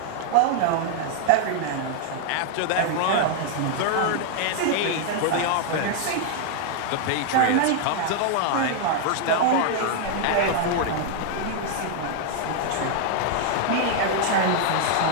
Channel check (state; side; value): different; both; correlation 0.00